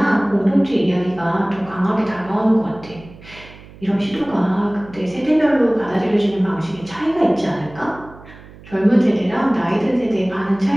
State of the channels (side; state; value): right; noise; hum, 20 dB below the sound